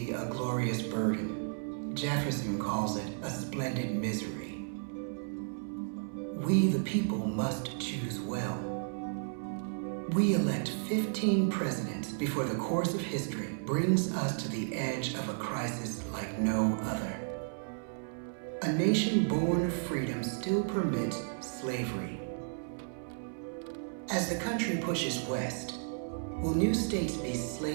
a glorious burden. Jefferson calls it a splendid misery. We, the people, must choose well. We elect 15 presidents before the course of history brings us to the edge of a crisis like no other. A nation born of freedom still permits slavery. As the country pushes west, will new states be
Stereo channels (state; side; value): silent; left; 56 dB below the other